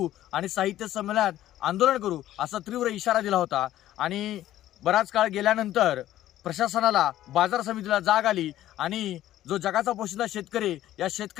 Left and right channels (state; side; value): quieter; right; 13.4 dB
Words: आणि साहित्य संमेलनात आंदोलन करू असा तीव्र इशारा दिला होता. आणि बराच काळ गेल्यानंतर प्रशासनाला, बाजार समितीला जाग आली आणि जो जगाचा पोशिंदा शेतकरी या